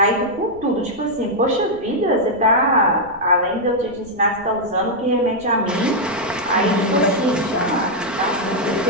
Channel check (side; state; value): right; noise; rumble, 22 dB below the sound